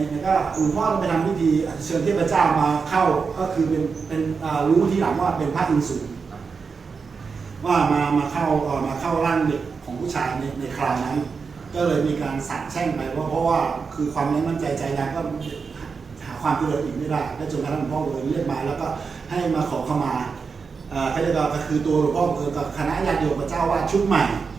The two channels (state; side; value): quieter; left; 5.2 dB